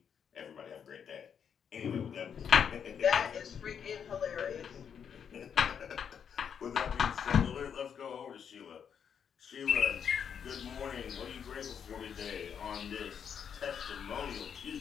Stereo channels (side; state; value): right; quieter; 7.6 dB